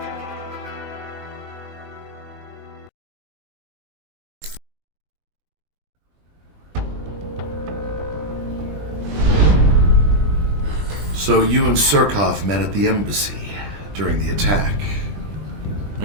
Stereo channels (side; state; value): left; late; 20 ms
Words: So you and Surkov met at the embassy during the attack.